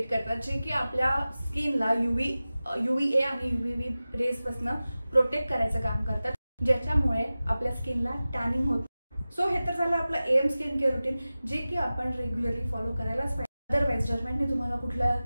करतात जे की आपल्या स्किनला UVA आणि UVB रेज पासून प्रोटेक्ट करायचं काम करतात, ज्याच्यामुळे आपल्या स्किनला टॅनिंग होत. सो हे तर झालं आपलं AM स्किन केअर रुटीन, जे की आपण रेग्युलरली फॉलो करायलाच पाहिजे. अदरवाईज डर्मॅटने तुम्हाला कुठला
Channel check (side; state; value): both; inverted; correlation -0.96